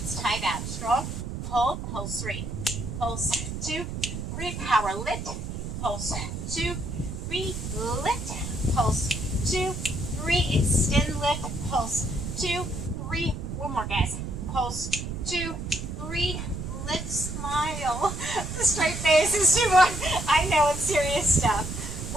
tight out. Strong. Hold. Pulse 3. Pulse 2, 3. Power lift. Pulse 2, 3. Lift. Pulse 2, 3. Extend lift. Pulse 2, 3. One more, guys. Pulse 2, 3. Lift. Smile. The straight face is too much. I know it's serious stuff.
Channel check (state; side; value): noise; right; rumble, 6 dB below the sound